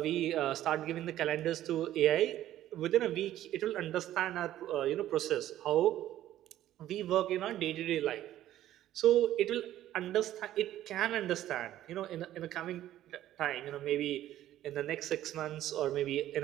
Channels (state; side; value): quieter; left; 13.1 dB